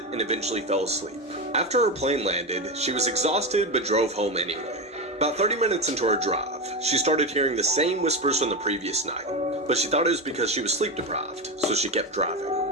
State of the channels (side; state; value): both; normal; correlation 0.17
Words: and eventually fell asleep. After her plane landed, she was exhausted but drove home anyway. About 30 minutes into her drive, she started hearing the same whispers from the previous night, but she thought it was because she was sleep deprived, so she kept driving.